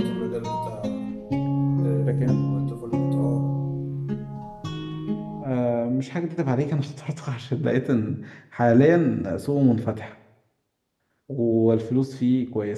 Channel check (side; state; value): both; identical; correlation 1.00